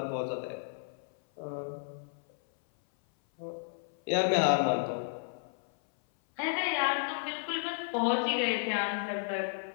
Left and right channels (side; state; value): right; silent; 56 dB below the other